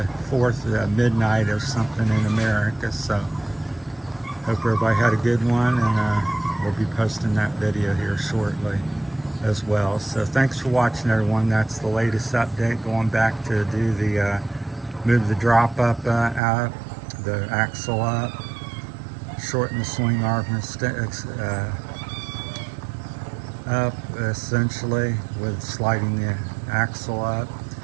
4th midnight or something in America, so hope everybody had a good one, and we'll be posting that video here shortly as well. So thanks for watching, everyone. That's the latest update. Going back to do the move the drop up out, the axle up, shorten the swing arm up essentially with sliding the axle up,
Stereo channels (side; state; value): left; drops out; at 16.4 s